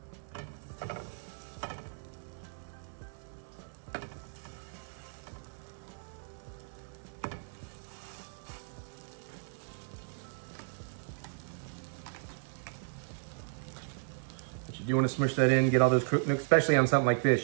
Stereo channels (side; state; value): left; silent; 54 dB below the other